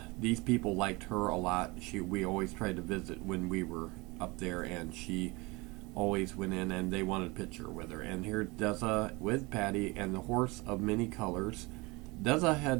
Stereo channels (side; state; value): left; quieter; 24.9 dB